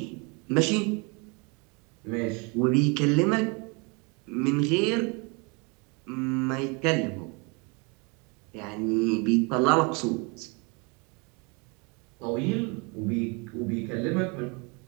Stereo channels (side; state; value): left; quieter; 31.1 dB